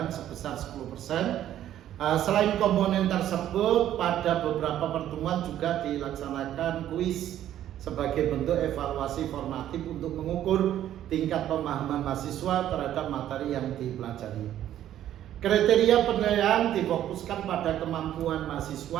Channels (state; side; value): quieter; left; 11.8 dB